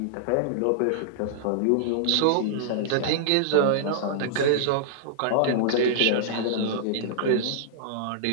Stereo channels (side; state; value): both; different; correlation -0.02